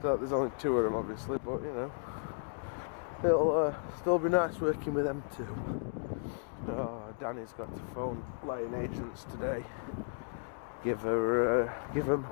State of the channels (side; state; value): right; silent; digital silence